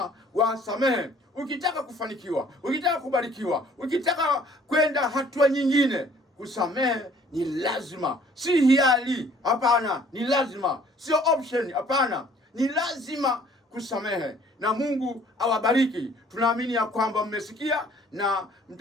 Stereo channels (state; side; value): normal; both; correlation 0.57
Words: wasamehe. Ukitaka kufanikiwa, ukitaka kubarikiwa, ukitaka kwenda hatua nyingine, kusamehe ni lazima, si hiari. Hapana, ni lazima, sio option. Hapana, ni lazima kusamehe. Na Mungu awabariki. Tunaamini ya kwamba mmesikia na